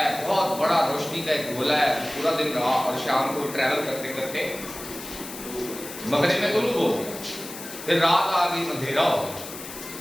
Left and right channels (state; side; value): noise; left; hiss, 12 dB below the sound